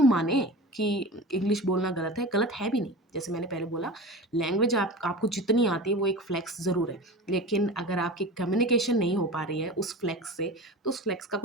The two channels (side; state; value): both; normal; correlation 0.32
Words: माने कि इंग्लिश बोलना गलत है? गलत है भी नहीं। जैसे मैंने पहले बोला, लैंग्वेज आपको जितनी आती है वो एक फ्लेक्स ज़रूर है। लेकिन अगर आपकी कम्युनिकेशन नहीं हो पा रही है उस फ्लेक्स से, तो उस फ्लेक्स का